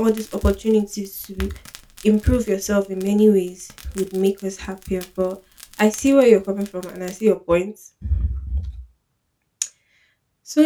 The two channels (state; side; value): identical; both; correlation 1.00